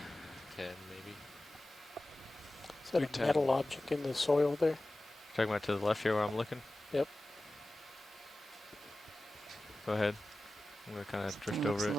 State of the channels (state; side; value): normal; both; correlation 0.96